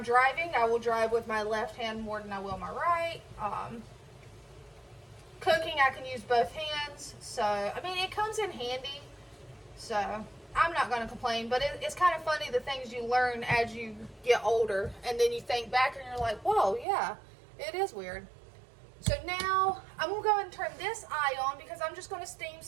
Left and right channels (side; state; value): left; drops out; at 16.9 s